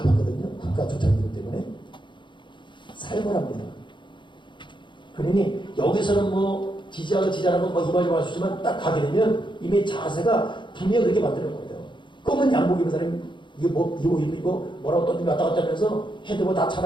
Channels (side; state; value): right; late; 0.23 ms